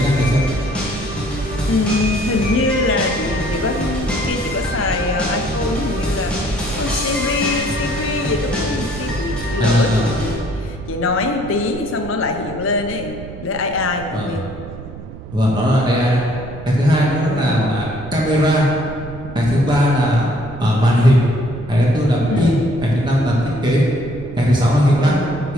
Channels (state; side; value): noise; right; rumble, 13 dB below the sound